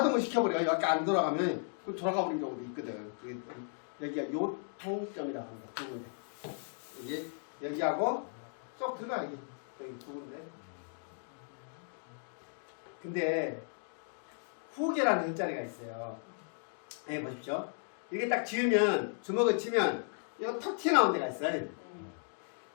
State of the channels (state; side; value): silent; right; digital silence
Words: 시켜버려요. 여기 안 돌아가면 그 돌아가버리는 경우도 있거든. 여기가 요통점이라고 합니다. 두 군데. 여기 여기하고 쏙 들어가 여기 두 군데. 근데 후계라는 혈자리가 있어요. 여기 보십시오. 이렇게 딱 지으면 주먹을 치면 이거 턱 튀어나온 데가 있어요.